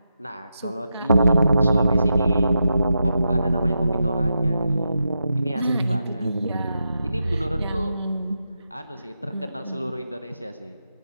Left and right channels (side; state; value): both; inverted; correlation -0.87